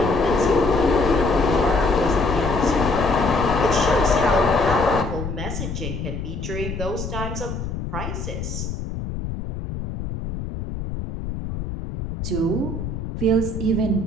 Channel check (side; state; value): left; noise; rumble, 6 dB below the sound